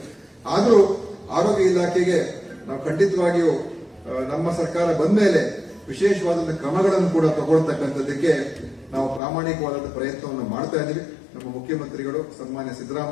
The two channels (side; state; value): right; drops out; at 9.2 s